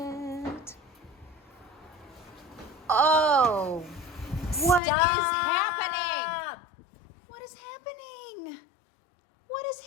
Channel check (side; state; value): right; drops out; at 4.8 s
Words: Oh, what is happening? What is happening? What